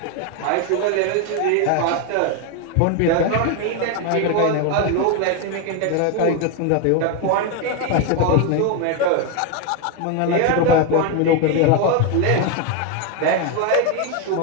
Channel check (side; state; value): both; different; correlation 0.02